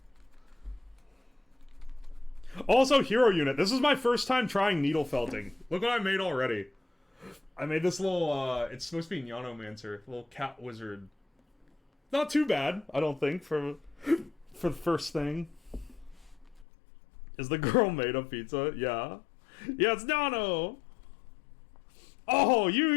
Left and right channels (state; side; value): drops out; right; at 16.7 s